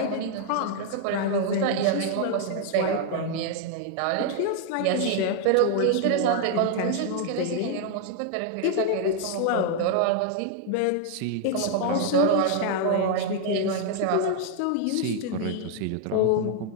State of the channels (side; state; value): both; different; correlation 0.00